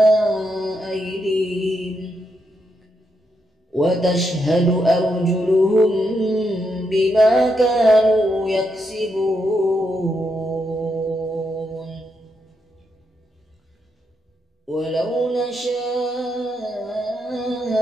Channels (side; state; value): both; normal; correlation 0.81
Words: أيديهم وتشهد أرجلهم بما كانوا يكسبون ولو نشاء